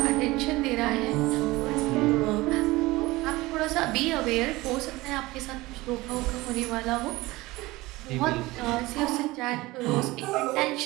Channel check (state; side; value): quieter; left; 20.1 dB